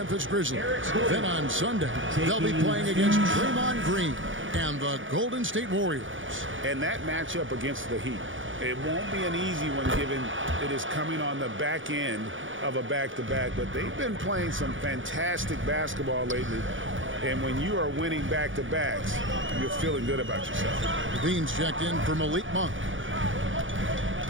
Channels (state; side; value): late; left; 0.57 ms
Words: Grizzlies. Then on Sunday, they'll be playing against Draymond Green and the Golden State Warriors. And that matchup against the Heat, it won't be an easy one given it is coming on the back end of a back-to-back, but they've been playing some fantastic basketball lately. And when you are winning back-to-backs, you're feeling good about yourself. Levine's checked in for Malik Monk.